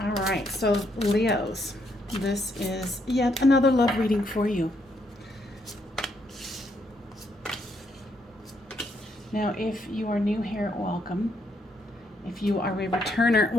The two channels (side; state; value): both; normal; correlation 0.74